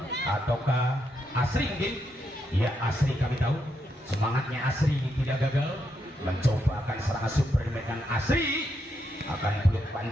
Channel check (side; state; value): both; normal; correlation 0.81